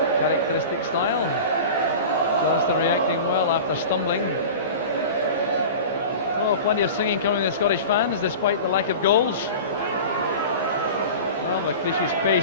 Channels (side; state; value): both; inverted; correlation -0.34